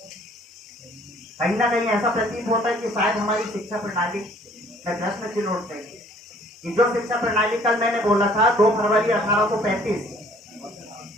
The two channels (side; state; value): both; normal; correlation 0.57